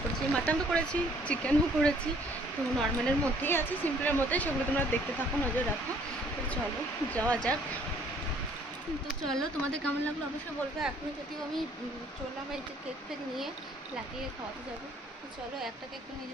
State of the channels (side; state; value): both; normal; correlation 0.60